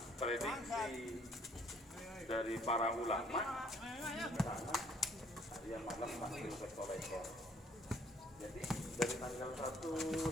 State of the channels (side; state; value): both; normal; correlation 0.62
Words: prediksi dari para ulama, karena harian malam pasti berkorekor. Jadi dari tanggal